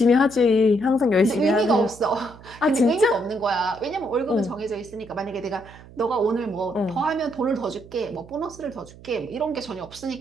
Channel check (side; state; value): right; noise; hum, 20 dB below the sound